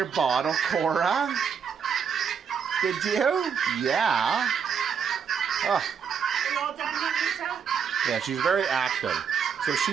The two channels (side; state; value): left; quieter; 7.0 dB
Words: bottle, Cora? Did you? Yeah. Oh. Are you all done, Juanita? Yeah, she's very active. So